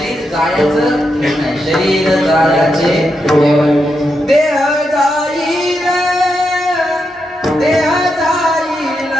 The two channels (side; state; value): both; normal; correlation 0.84